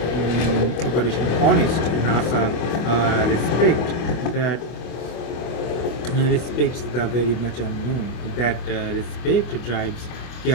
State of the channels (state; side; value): late; right; 25 ms